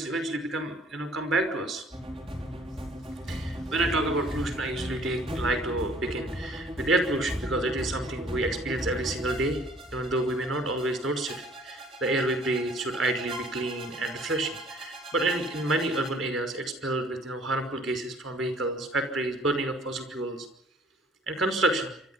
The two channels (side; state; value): both; normal; correlation 0.56